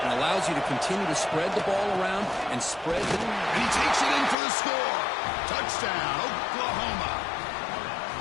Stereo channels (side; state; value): right; drops out; at 4.4 s